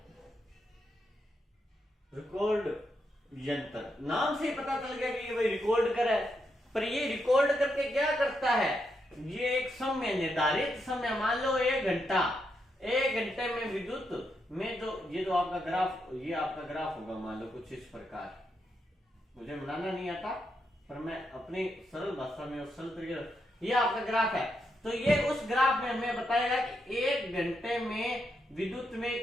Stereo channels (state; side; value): normal; both; correlation 0.82